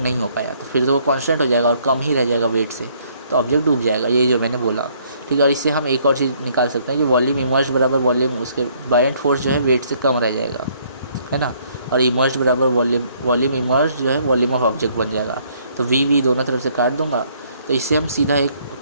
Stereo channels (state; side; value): inverted; both; correlation -0.65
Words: हो पाया, तो फिर तो वो कांस्टेंट हो जाएगा और कम ही रह जाएगा वेट से, तो ऑब्जेक्ट डूब जाएगा, ये जो मैंने बोला, ठीक है। और इससे हम एक और चीज़ निकाल सकते हैं कि वॉल्यूम इमर्ज्ड बराबर वॉल्यूम, उसके बायएंट फोर्स जो है वेट से कम रह जाएगा, है ना, और इमर्ज्ड बराबर वॉल्यूम इमर्ज्ड जो है वॉल्यूम ऑफ ऑब्जेक्ट बन जाएगा। तो वी दोनों तरफ से काट दूंगा, तो इससे हम सीधा एक